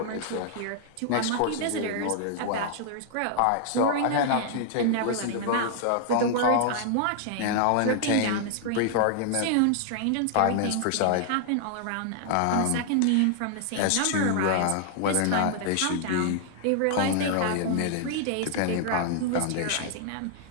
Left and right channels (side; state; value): both; different; correlation -0.01